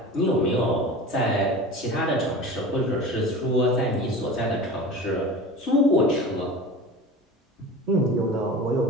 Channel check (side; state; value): both; normal; correlation 0.35